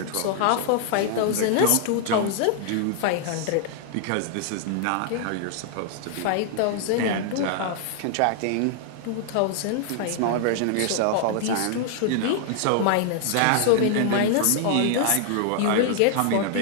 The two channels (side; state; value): both; different; correlation 0.00